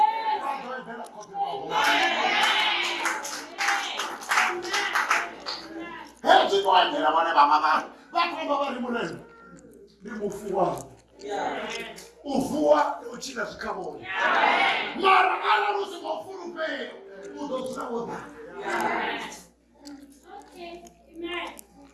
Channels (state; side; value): identical; both; correlation 1.00